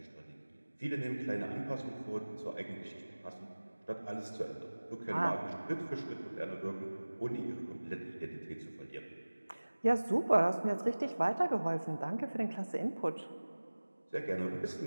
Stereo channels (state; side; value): inverted; both; correlation -1.00